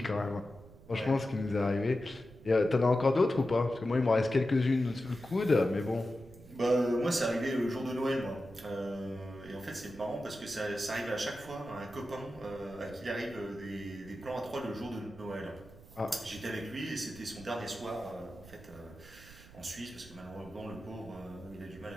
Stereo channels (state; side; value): noise; right; rumble, 20 dB below the sound